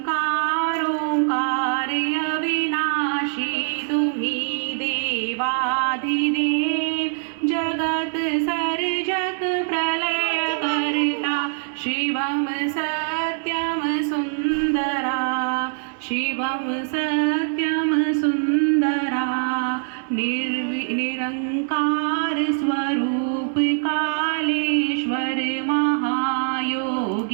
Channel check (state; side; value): silent; left; 58 dB below the other